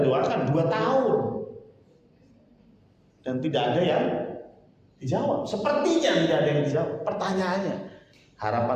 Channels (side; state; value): both; identical; correlation 1.00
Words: doakan 2 tahun. Dan tidak ada yang dijawab. Sepertinya tidak ada yang dijawab. Pertanyaannya,